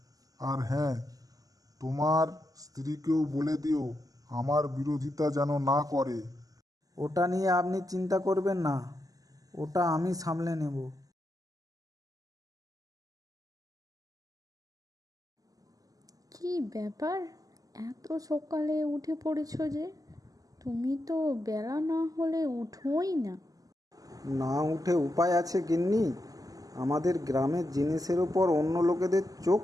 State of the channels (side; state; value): left; late; 0.17 ms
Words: আর হ্যাঁ, তোমার স্ত্রীকেও বলে দিও আমার বিরোধিতা যেন না করে। ওটা নিয়ে আপনি চিন্তা করবেন না, ওটা আমি সামলে নেব। কি ব্যাপার, এত সকালে উঠে পড়েছো যে? তুমি তো বেলা না হলে উঠোই না। না উঠে উপায় আছে গিন্নি? আমাদের গ্রামের জিনিসের ওপর অন্য লোকেদের চোখ